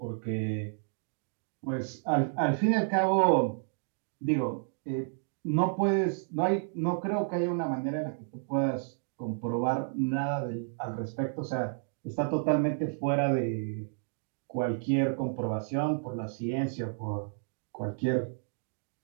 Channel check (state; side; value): silent; left; digital silence